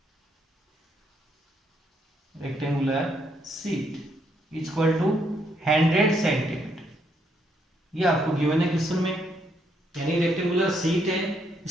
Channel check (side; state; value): both; normal; correlation 0.74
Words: rectangular sheet equal to 100 centimetre. ये आपको given है question में, यानी रेक्टेंगुलर शीट है